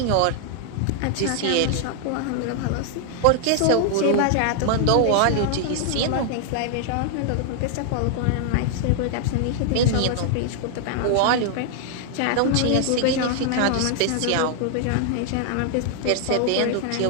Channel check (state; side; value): different; both; correlation -0.01